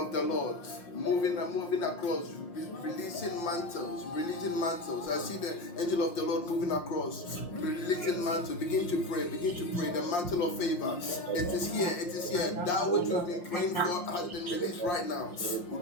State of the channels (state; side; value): late; right; 5.7 ms